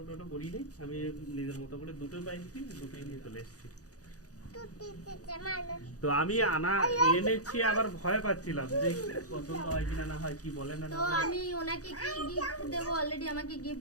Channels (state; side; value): late; right; 0.67 ms